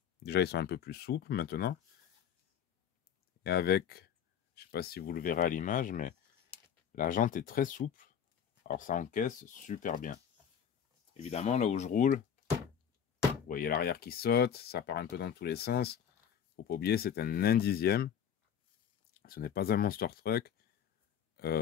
déjà ils sont un peu plus souples maintenant. Et avec, je sais pas si vous le verrez à l'image, mais la jante est très souple. Alors ça encaisse super bien. Évidemment, là où je roule, vous voyez l'arrière qui saute, ça part un peu dans tous les sens. Faut pas oublier, c'est un 1/10. Ce n'est pas un monster truck.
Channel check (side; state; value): right; quieter; 8.5 dB